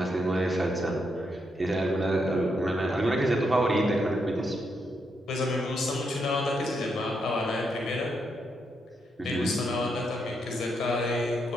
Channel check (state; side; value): normal; both; correlation 0.80